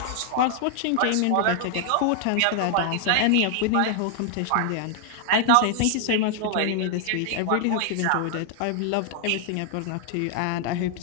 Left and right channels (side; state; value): both; different; correlation 0.00